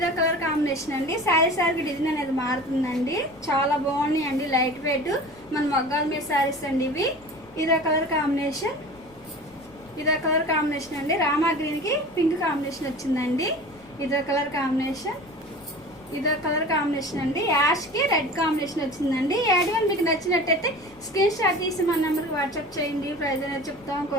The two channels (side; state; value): left; noise; rumble, 27 dB below the sound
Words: కాంబినేషన్, అండి. శారీకి డిజైన్ అనేది మారుతుందండి. చాలా బాగున్నాయి అండి. లైట్ వెయిట్ మన మగ్గాల మీద శారీస్ అండి ఇవి. ఇదో కలర్ కాంబినేషన్, అండి. రామా గ్రీన్ కి పింక్ కాంబినేషన్ వచ్చిందండి. ఇదో కలర్ కాంబినేషన్, అండి. యాష్ కి రెడ్ కాంబినేషన్ వచ్చిందండి. యాడ్ మీకు నచ్చినట్టయితే స్క్రీన్ షాట్ తీసి మన నెంబర్కి వాట్సాప్ చేయండి. ప్రైజ్ అనేది చెప్తాం,